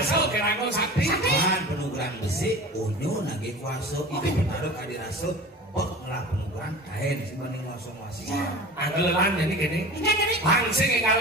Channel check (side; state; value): both; normal; correlation 0.36